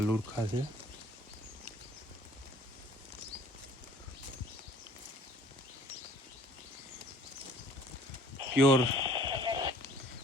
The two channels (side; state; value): both; normal; correlation 0.55